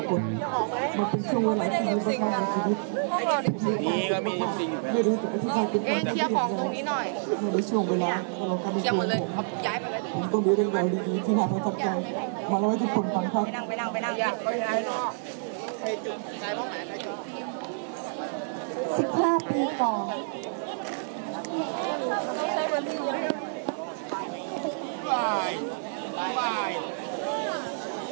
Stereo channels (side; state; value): left; silent; 59 dB below the other